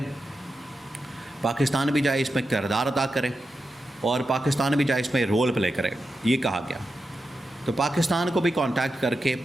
پاکستان بھی چاہے اس میں کردار ادا کرے، اور پاکستان بھی چاہے اس میں رول پلے کرے، یہ کہا گیا۔ تو پاکستان کو بھی کانٹیکٹ کر کے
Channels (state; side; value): normal; both; correlation 0.89